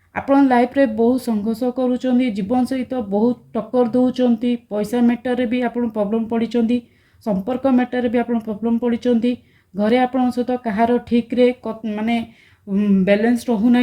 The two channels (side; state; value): both; identical; correlation 1.00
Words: आपण लाइफ रे बहुत संघर्ष करूँ जीवन सहित बहुत टक्कर दौरान पैसा मैटर भी आप प्रॉब्लम पड़ी संपर्क मैटर भी आप प्रॉब्लम पड़ी घरे आपण सहित कहार ठीक रे माने बैलेंस रहूना